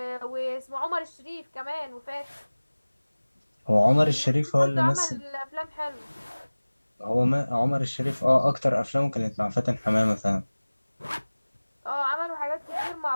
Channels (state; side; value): inverted; both; correlation -1.00